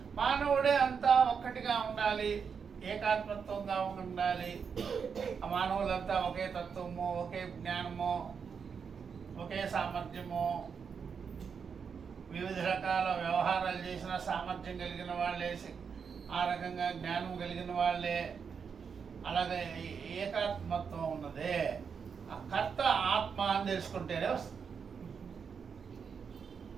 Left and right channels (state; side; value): quieter; left; 6.3 dB